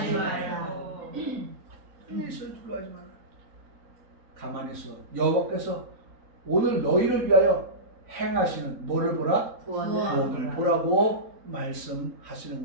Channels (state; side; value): late; left; 3.9 ms